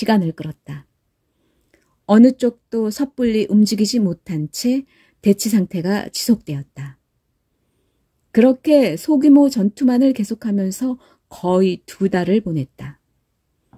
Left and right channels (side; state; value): both; identical; correlation 1.00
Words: 끌었다. 어느 쪽도 섣불리 움직이지 못한 채 대치 상태가 지속되었다. 그렇게 소규모 전투만을 계속하면서 거의 2달을 보냈다.